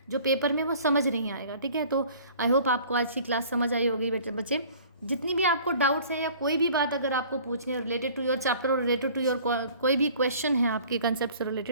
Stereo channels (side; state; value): both; inverted; correlation -0.50